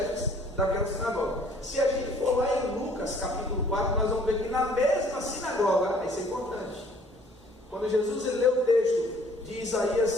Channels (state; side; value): normal; both; correlation 0.57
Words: daquela sinagoga. Se a gente for lá em Lucas capítulo 4, nós vamos ver que na mesma sinagoga, isso é importante, quando Jesus leu o texto de Isaías